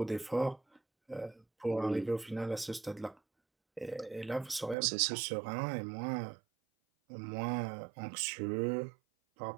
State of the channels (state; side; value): drops out; left; at 4.8 s